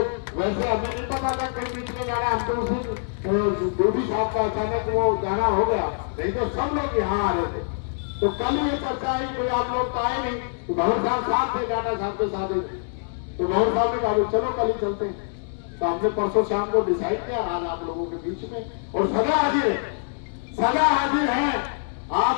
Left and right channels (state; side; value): silent; right; 62 dB below the other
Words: वैसे हमें नहीं पता था कहीं बीच में जाना, हम तो उस दिन गोभी साहब का अचानक वो जाना हो गया, नहीं तो सब लोग यहाँ आ रहे थे। तो कल ये चर्चा आई, कोई आप लोग तो आए नहीं, तो भंवर साहब थे टाटा साहब के साथ ही, तो भंवर साहब ने कहा चलो कल ही चलते हैं। तो हमने परसों शाम को डिसाइड किया, आज आप लोगों के बीच में और सदा हाजिर है, सदा हाजिर है।